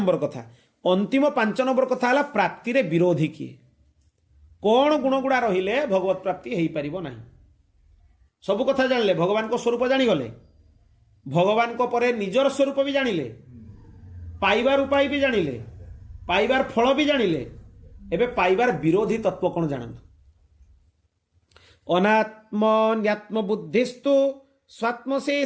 कथा अंतिम 5 नंबर कथा हला प्राप्ति रे विरोधी किए कौन गुण गुड़ा रहिले भगवत प्राप्ति हेई परिबो नाही सब कथा जानले भगवान को स्वरूप जानी गले भगवान को परे निजर स्वरूप भी जानिले पाइबार उपाय भी जानिले पाइबार फल भी जानिले एबे पाइबार विरोधी तत्व कौन जानतु अनात्मन्यात्म बुद्धिस्तु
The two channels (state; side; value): identical; both; correlation 1.00